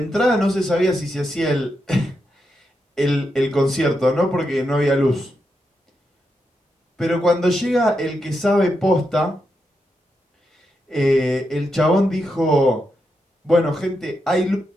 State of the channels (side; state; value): both; normal; correlation 0.85